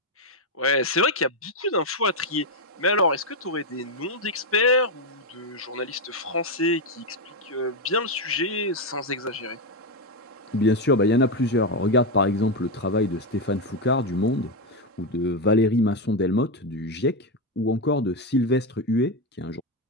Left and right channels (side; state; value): both; normal; correlation 0.07